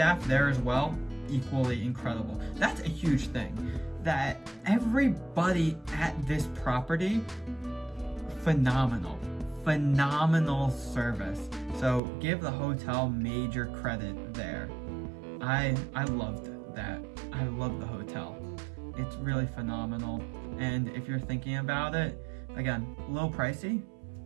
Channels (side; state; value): left; drops out; at 12.0 s